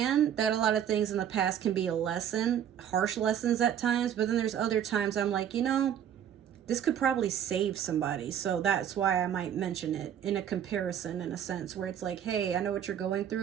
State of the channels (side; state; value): left; quieter; 9.5 dB